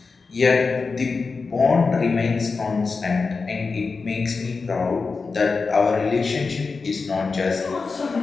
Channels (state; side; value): quieter; right; 4.5 dB